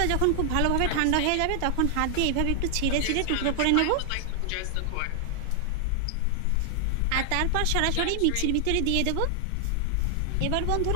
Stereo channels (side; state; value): both; different; correlation 0.00